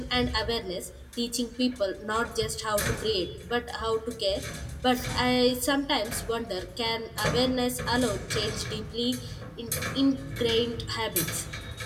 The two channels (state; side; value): identical; both; correlation 1.00